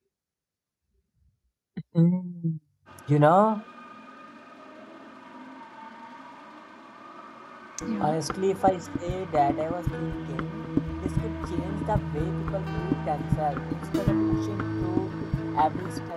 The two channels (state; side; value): identical; both; correlation 1.00